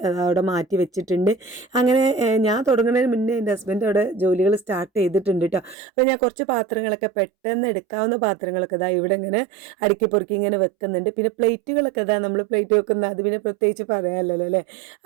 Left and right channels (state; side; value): drops out; left; at 5.8 s